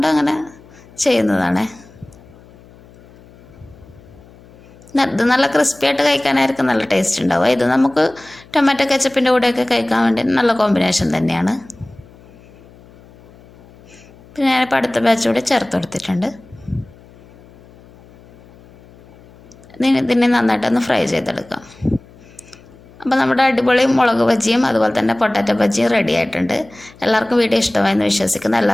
അങ്ങനെ ചെയ്യുന്നതാണ്. ഇത് നല്ല ക്രിസ്പി ആയിട്ട് കഴിക്കാനായിരിക്കും നല്ല ടേസ്റ്റ് ഉണ്ടാവുക. ഇത് നമുക്ക് ടൊമാറ്റോ കെച്ചപ്പിൻ്റെ കൂടെയൊക്കെ കഴിക്കാൻ വേണ്ടി നല്ല കോമ്പിനേഷൻ തന്നെയാണ്. പിന്നെ ഞാനിപ്പോൾ അടുത്ത ബാച്ച് കൂടി ചേർത്ത് കൊടുത്തിട്ടുണ്ട്. ഇതിനെ നന്നായിട്ടൊന്ന് ഫ്രൈ ചെയ്തെടുക്കാം. അപ്പോൾ നമ്മുടെ അടിപൊളി മുളക് ബജിയും അതുപോലെ തന്നെ പൊട്ടാറ്റോ ബജിയും റെഡി ആയിട്ടുണ്ട്. എല്ലാവർക്കും വീഡിയോ ഇഷ്ടമായെന്ന് വിശ്വസിക്കുന്നു.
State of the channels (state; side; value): noise; left; hum, 24 dB below the sound